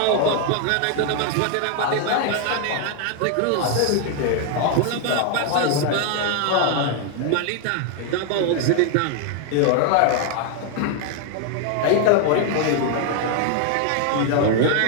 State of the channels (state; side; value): different; both; correlation 0.00